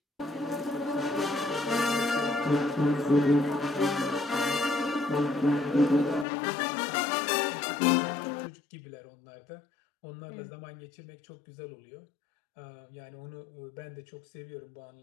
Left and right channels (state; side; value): drops out; right; at 6.2 s